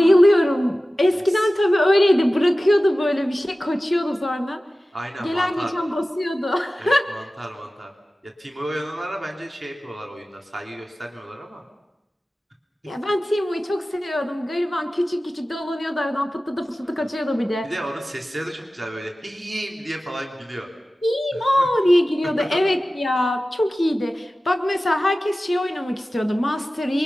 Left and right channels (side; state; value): both; normal; correlation 0.96